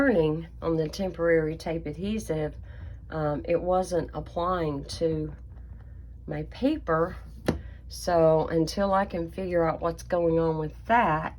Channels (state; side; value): identical; both; correlation 1.00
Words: on the temporary tape adhesive, it wasn't applying to my paper. So until I can figure out what's going on with that,